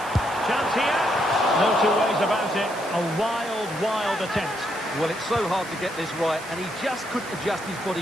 Chance here. No two ways about it. A wild attempt. Well, it's so hard to get this right, and he just couldn't adjust his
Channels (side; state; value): right; noise; hiss, 16 dB below the sound